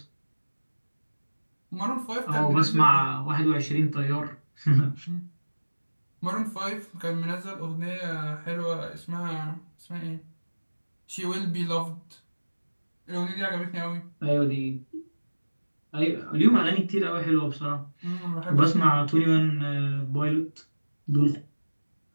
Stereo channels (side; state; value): both; inverted; correlation -1.00